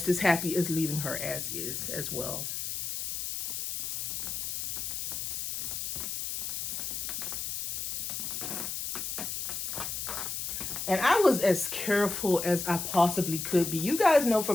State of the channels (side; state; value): left; noise; hiss, 3 dB below the sound